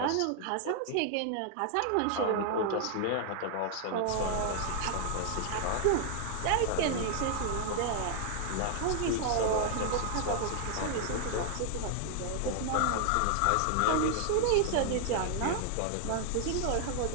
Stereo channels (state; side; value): different; both; correlation 0.00